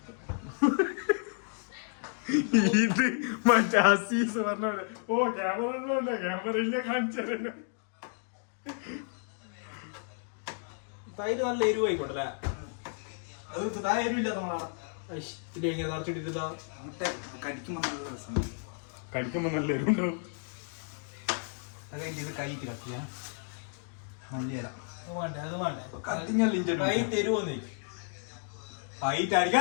ഇത് മറ്റേ അസീസ് പറഞ്ഞ ഓ ക്യാമറ ഒന്നുമില്ല, ക്യാമറ ഇല്ല കാണിച്ചു. തൈര് നല്ല എരിവ് ആയിക്കോട്ടല്ലേ? അത് താ എരിവില്ല നമ്മളാണ് ഇങ്ങനെ നിറച്ചിട്ടില്ല. കടിക്കുമ്പോ നല്ല രസം, കടിക്കുമ്പോ നല്ല എരിവുണ്ടാവും. ഇത് കൈക്ക് കത്തിയാ മല്ലിയല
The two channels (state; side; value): silent; right; 57 dB below the other